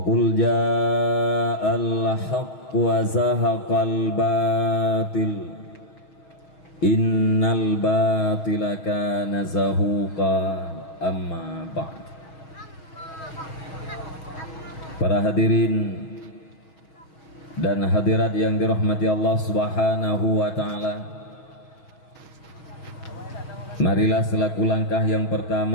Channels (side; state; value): right; late; 6.3 ms